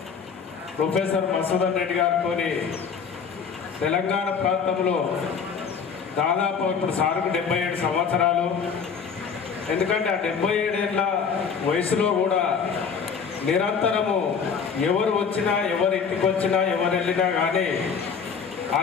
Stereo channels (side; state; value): right; quieter; 6.3 dB